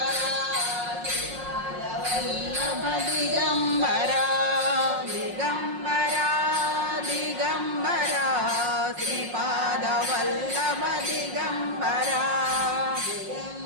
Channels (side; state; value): left; late; 5.5 ms